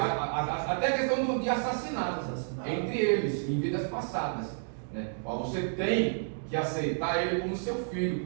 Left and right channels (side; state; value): left; silent; digital silence